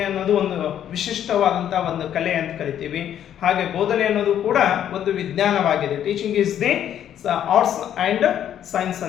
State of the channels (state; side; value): quieter; right; 10.2 dB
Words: ಅನ್ನೋದು ಒಂದು ವಿಶಿಷ್ಟವಾದಂಥ ಒಂದು ಕಲೆ ಅಂತ ಕರಿತೀವಿ. ಹಾಗೆ ಬೋಧನೆ ಅನ್ನೋದು ಕೂಡ ಒಂದು ವಿಜ್ಞಾನವಾಗಿದೆ. Teaching is the arts and science